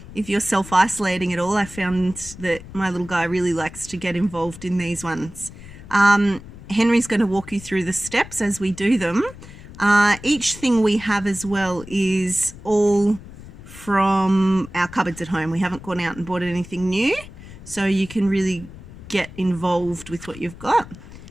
If you're self-isolating at all, I found that my little guy really likes to get involved in these ones. Henry's going to walk you through the steps as we do them. Each thing we have as well is all from our cupboards at home. We haven't gone out and bought anything new, so you can really get involved with what you've got.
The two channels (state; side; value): noise; left; rumble, 16 dB below the sound